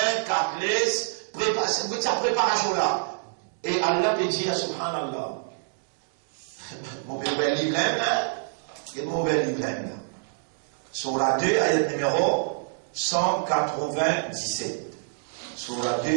4 laisses, préparez sa préparation là. Et Allah peut dire, subhanallah, mon bel livre là, et mon bel livre là. Sur la 2, ayat numéro 197. Sur la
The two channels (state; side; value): silent; left; digital silence